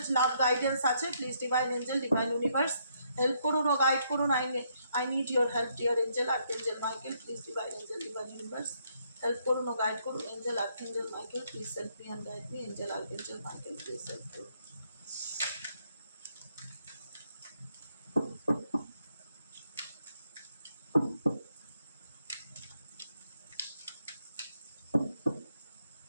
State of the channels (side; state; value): both; inverted; correlation -0.73